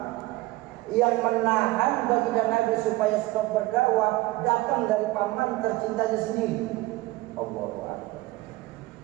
yang menahan baginda Nabi supaya stop berdakwah datang dari paman tercintanya sendiri. Allahu Akbar.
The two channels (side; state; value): left; quieter; 19.1 dB